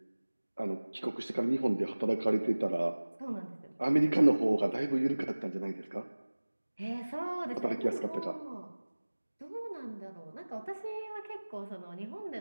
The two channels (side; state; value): both; inverted; correlation -1.00